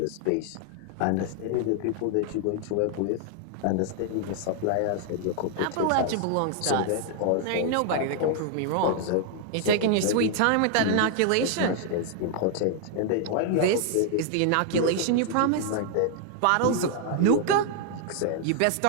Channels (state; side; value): different; both; correlation 0.00